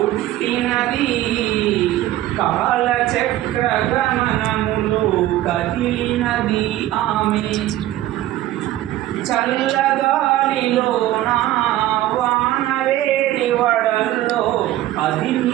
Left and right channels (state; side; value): quieter; left; 14.5 dB